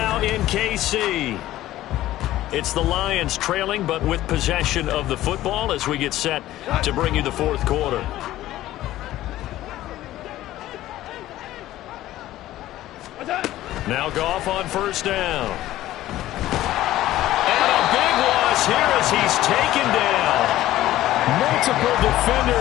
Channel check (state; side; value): quieter; right; 14.8 dB